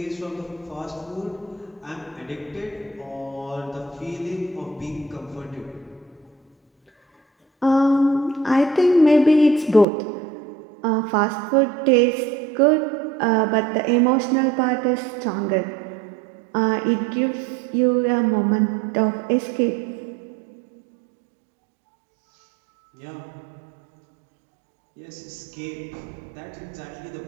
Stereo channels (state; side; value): drops out; left; at 9.9 s